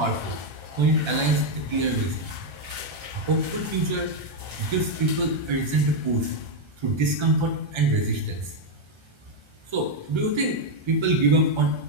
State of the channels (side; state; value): left; late; 1.3 ms